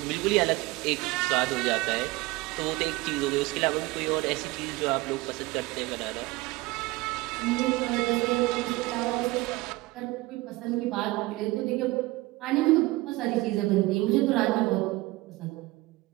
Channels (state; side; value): quieter; left; 20.7 dB